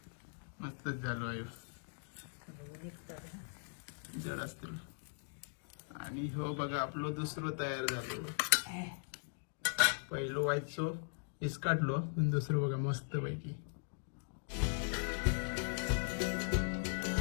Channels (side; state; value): right; silent; digital silence